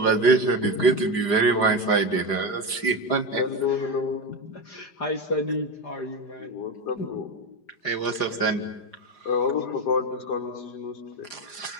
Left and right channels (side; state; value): right; late; 4.9 ms